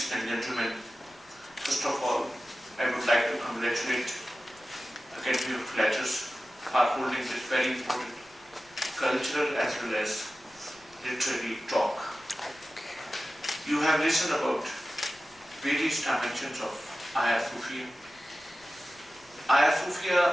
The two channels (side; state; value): left; noise; rumble, 29 dB below the sound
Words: and gentlemen, first of all, I would like to congratulate Academy of Letters for holding this very important cultural as well as literary talk. You have listened about various dimensions of Hagia Sophia. Hagia Sophia